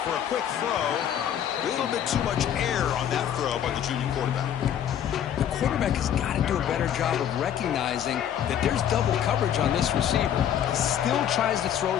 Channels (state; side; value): quieter; right; 9.8 dB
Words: for a quick throw. A little bit too much air on that throw by the junior quarterback. The quarterback has got to do a better job of recognizing that there's double coverage on this receiver. He still tries to throw